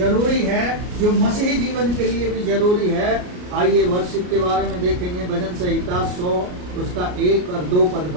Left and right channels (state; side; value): late; left; 33 ms